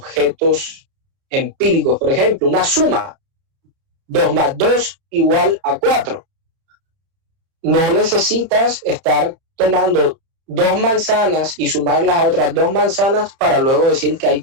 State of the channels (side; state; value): left; late; 31 ms